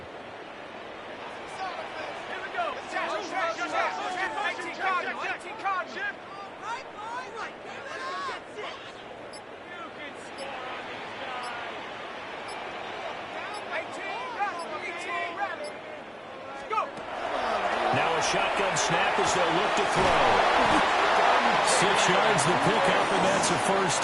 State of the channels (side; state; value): both; identical; correlation 1.00